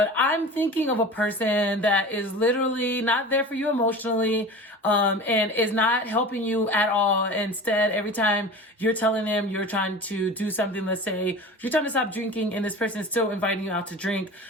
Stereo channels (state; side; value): normal; both; correlation 0.35